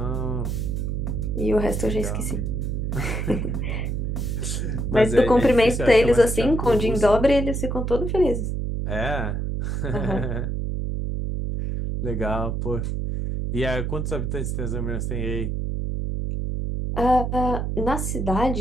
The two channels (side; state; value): right; noise; hum, 1 dB below the sound